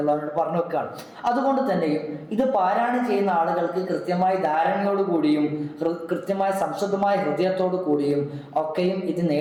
പറഞ്ഞു വെക്കുകയാണ്. അതുകൊണ്ട് തന്നെയും ഇത് പാരായണം ചെയ്യുന്ന ആളുകൾക്ക് കൃത്യമായ ധാരണയോടുകൂടിയും കൃത്യമായ സംശുദ്ധമായ ഹൃദയത്തോടു കൂടിയും ഒക്കെയും ഇത്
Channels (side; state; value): both; identical; correlation 1.00